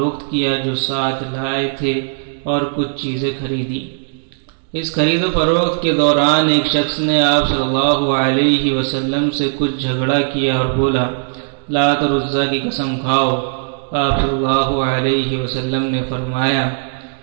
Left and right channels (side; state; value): left; silent; digital silence